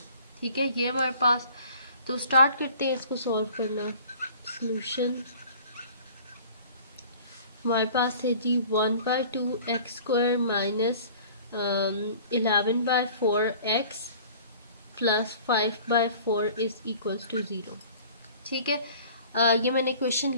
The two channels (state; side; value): inverted; both; correlation -0.48